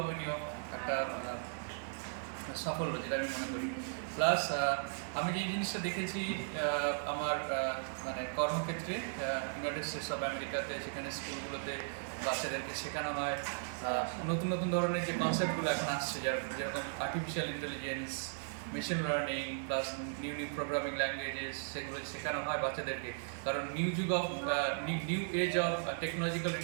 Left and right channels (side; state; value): left; silent; 53 dB below the other